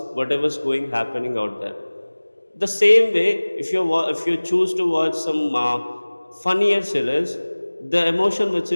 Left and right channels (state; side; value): inverted; both; correlation -1.00